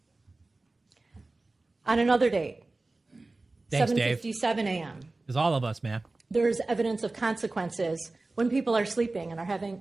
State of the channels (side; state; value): left; quieter; 3.2 dB